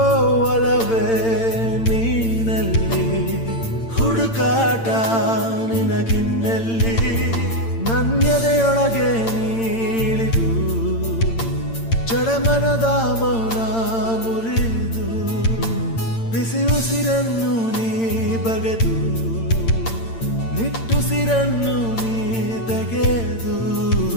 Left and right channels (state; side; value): late; right; 8.8 ms